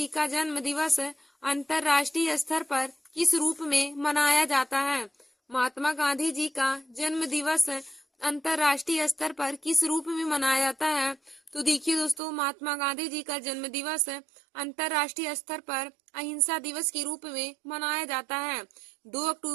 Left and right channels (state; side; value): drops out; left; at 12.2 s